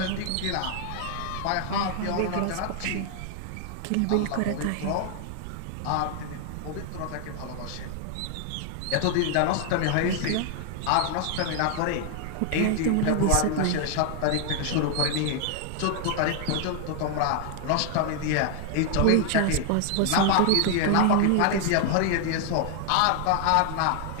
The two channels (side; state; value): both; different; correlation 0.00